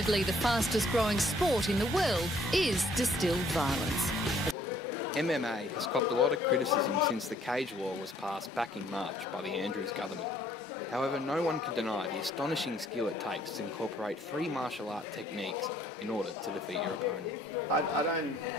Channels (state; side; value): normal; both; correlation 0.62